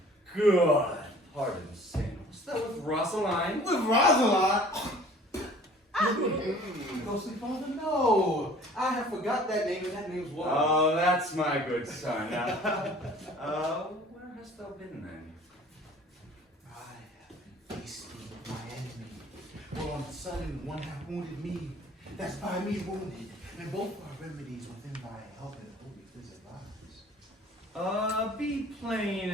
Good. Pardon, sin. Was that with Rosaline? With Rosaline? Ghostly Father, no. I have forgot that name, and that name's what? Oh, that's my good son. Now, where hast thou been then? I have been feasting with my enemy. For on sudden one hath wounded me, that's by me wounded, and both are remedies within thy help and holy visit lives. Be plain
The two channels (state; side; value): normal; both; correlation 0.49